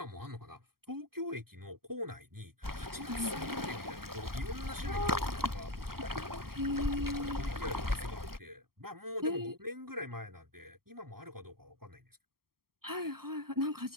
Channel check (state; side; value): late; left; 0.94 ms